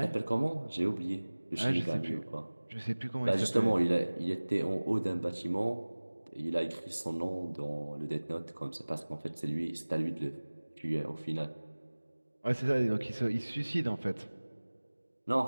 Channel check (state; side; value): inverted; both; correlation -1.00